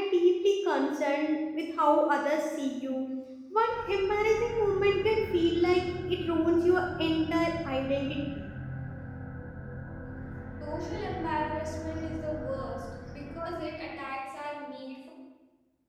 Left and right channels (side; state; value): both; identical; correlation 1.00